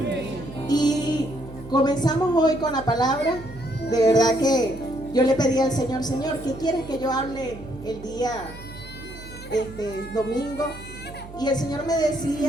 Y comenzamos hoy con la palabra. De verdad que yo le pedí al Señor: Señor, ¿qué quieres que yo hable el día domingo? Y el Señor me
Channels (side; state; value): right; noise; hum, 15 dB below the sound